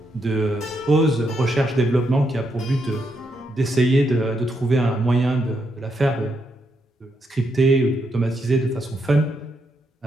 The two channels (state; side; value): normal; both; correlation 0.80